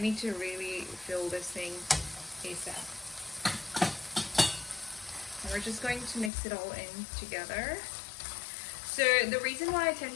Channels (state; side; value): drops out; right; at 6.3 s